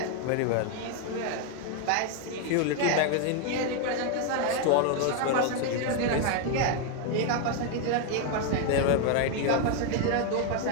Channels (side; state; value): both; different; correlation 0.01